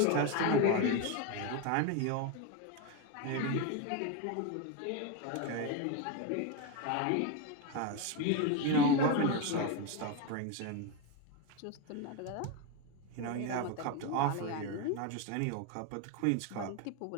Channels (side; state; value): both; different; correlation 0.03